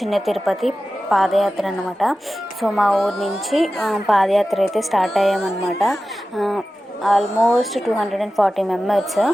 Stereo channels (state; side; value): normal; both; correlation 0.95